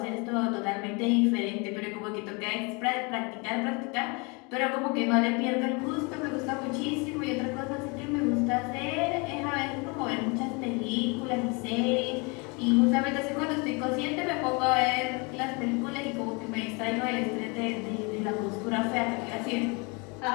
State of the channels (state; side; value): quieter; right; 30.2 dB